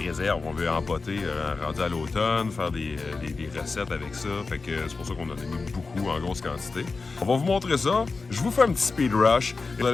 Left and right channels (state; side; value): quieter; right; 4.1 dB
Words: On veut empoter rendu à l'automne, faire des recettes avec ça. Fait que c'est pour ça qu'on en a mis beaucoup en grosse quantité. On va vous montrer ça. Je vous fais un petit speed rush. Vous